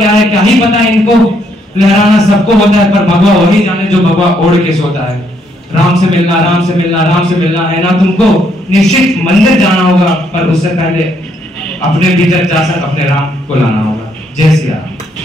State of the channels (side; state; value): both; normal; correlation 0.72